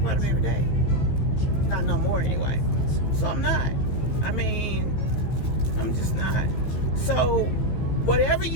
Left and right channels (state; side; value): late; right; 15 ms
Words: them every day. Not no more anyway. So I'm not. I mean, I'm just not. So whatever